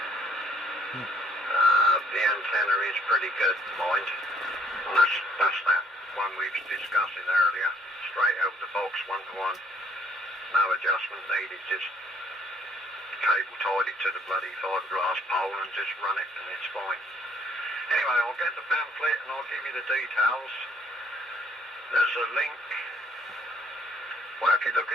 the antenna is pretty good, mind. And that's that one we was discussing earlier. Straight out the box, 1-to-1. No adjustment needed, just cable tied it to the bloody fiberglass pole and just run it and it's fine. Anyway, I'll get the pamphlet and I'll give you the details. There's a link. Well, if you look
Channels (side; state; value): both; normal; correlation 0.65